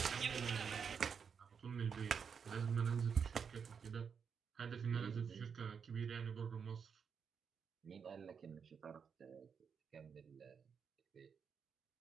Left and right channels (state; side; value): quieter; left; 6.5 dB